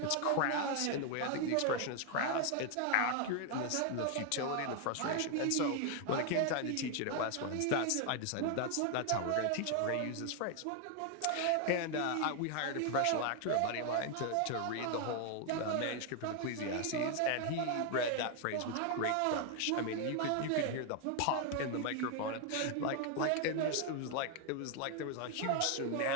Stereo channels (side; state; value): both; different; correlation 0.00